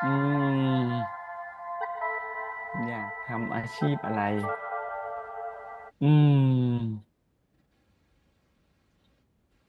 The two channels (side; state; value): both; identical; correlation 1.00